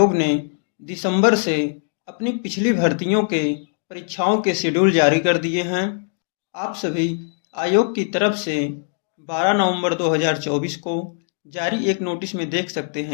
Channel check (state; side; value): silent; right; digital silence